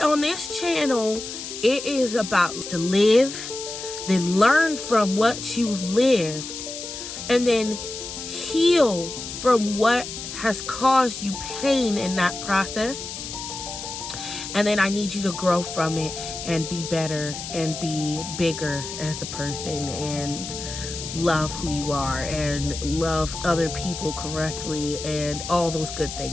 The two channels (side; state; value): left; noise; hiss, 8 dB below the sound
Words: this channel, it is about to live, then learn from what you've lived, and then heal from what has caused you pain in that process. And then I need you to grow from it and be better and be bigger as a person and love who you are and love other people correctly and all those good